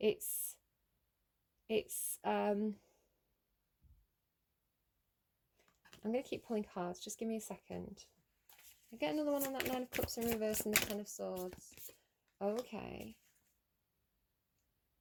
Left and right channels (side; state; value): both; identical; correlation 1.00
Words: I'm going to keep pulling cards. Just give me a second. I get another one on that 9 of Cups in reverse and the 10 of Swords. Okay.